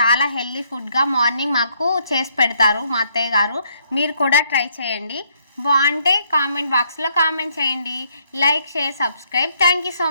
హెల్తీ ఫుడ్గా మార్నింగ్ మాకు చేసి పెడతారు మా అత్తయ్య గారు. మీరు కూడా ట్రై చేయండి. బాగుంటే కామెంట్ బాక్స్లో కామెంట్ చేయండి. Like, share, subscribe. Thank you so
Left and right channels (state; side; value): inverted; both; correlation -0.70